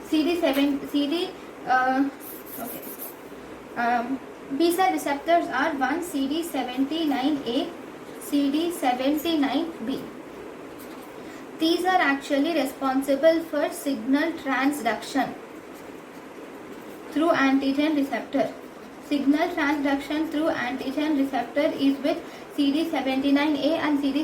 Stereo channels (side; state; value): both; identical; correlation 1.00